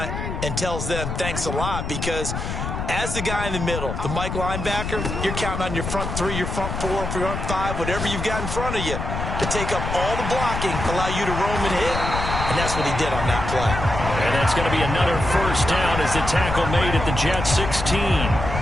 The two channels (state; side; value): noise; left; rumble, 4 dB below the sound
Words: and tells them thanks a lot, because as the guy in the middle, the Mike linebacker, you're counting on your front 3, your front 4, your front 5, whatever you've got in front of you to take up all the blocking, allow you to roam and hit. And that's what he did on that play. And that's going to be another 1st down as the tackle made at the Jets 16.